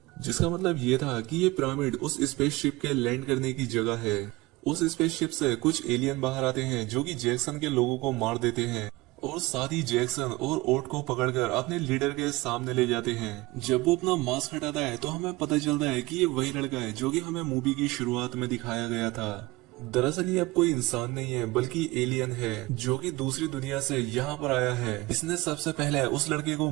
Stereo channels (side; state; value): left; quieter; 21.4 dB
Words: जिसका मतलब ये था कि ये पिरामिड उस स्पेसशिप के लैंड करने की जगह है। उस स्पेसशिप से कुछ एलियन बाहर आते हैं जो कि जैक्सन के लोगों को मार देते हैं और साथ ही जैक्सन और ओट को पकड़कर अपने लीडर के सामने ले जाते हैं। जब वो अपना मास्क हटाता है तो हमें पता चलता है कि ये वही लड़का है जो कि हमें मूवी की शुरुआत में दिखाया गया था। दरअसल ये अब कोई इंसान नहीं है बल्कि एलियन है जो कि दूसरी दुनिया से यहाँ पर आया है। इसने सबसे पहले उस लड़के को